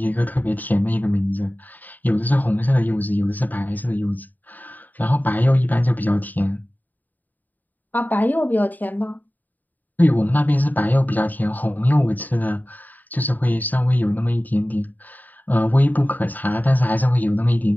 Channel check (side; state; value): right; late; 0.086 ms